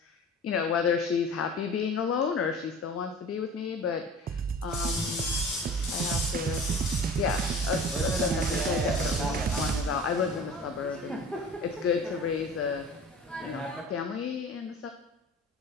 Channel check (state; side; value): normal; both; correlation 0.40